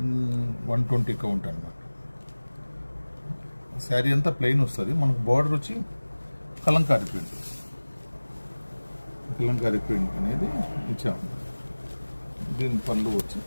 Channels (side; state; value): both; inverted; correlation -1.00